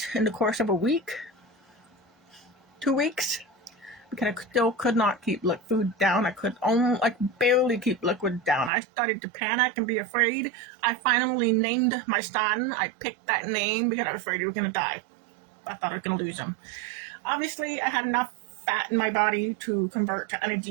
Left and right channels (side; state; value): left; drops out; at 8.7 s